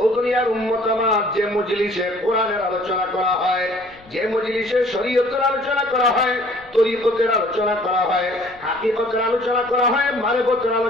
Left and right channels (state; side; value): noise; left; rumble, 27 dB below the sound